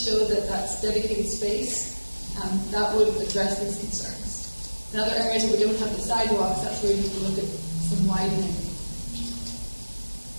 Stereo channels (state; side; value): inverted; both; correlation -1.00